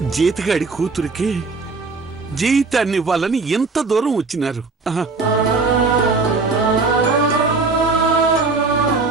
జీతగాడి కూతురికి జీవితాన్ని ఇవ్వాలని ఎంత దూరం వచ్చినారు.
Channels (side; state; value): left; quieter; 4.1 dB